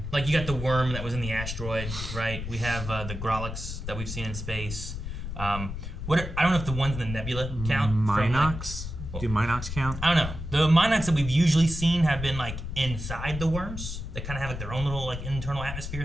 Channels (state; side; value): noise; left; rumble, 7 dB below the sound